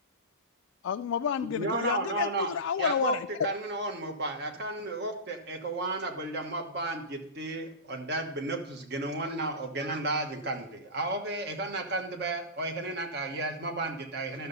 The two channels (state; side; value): normal; both; correlation -0.20